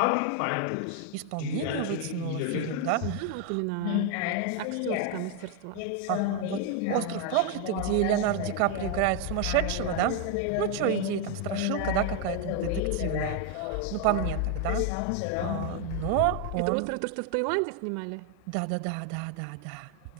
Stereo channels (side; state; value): both; different; correlation 0.01